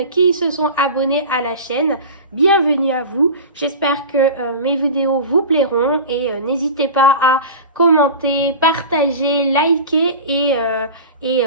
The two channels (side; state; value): both; inverted; correlation -0.32